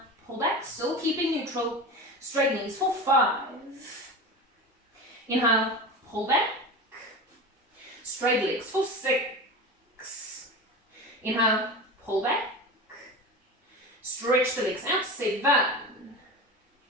pull back, still keeping neutral. Straight knees for 5. Inhale, pull back. Straight legs for 6. Inhale, pull back. Stretch the legs out. 7.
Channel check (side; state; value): both; normal; correlation 0.28